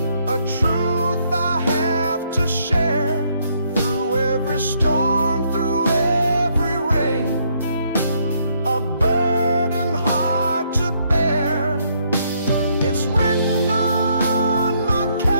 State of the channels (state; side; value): inverted; both; correlation -0.71